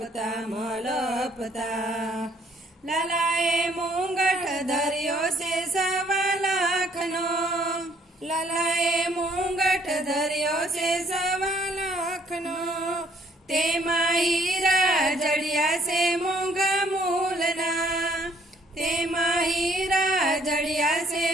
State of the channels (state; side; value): normal; both; correlation 0.64